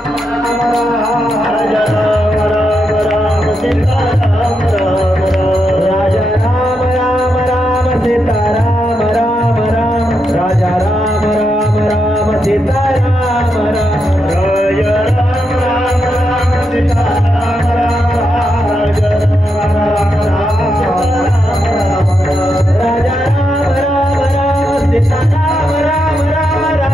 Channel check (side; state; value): both; normal; correlation 0.83